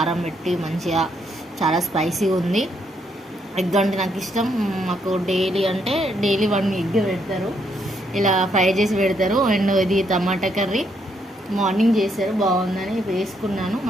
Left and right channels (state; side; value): normal; both; correlation 0.74